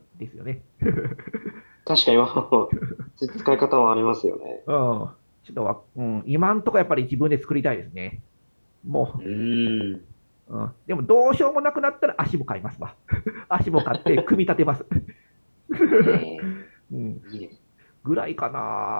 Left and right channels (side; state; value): both; inverted; correlation -1.00